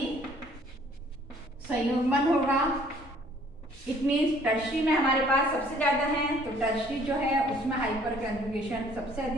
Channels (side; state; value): both; normal; correlation 0.58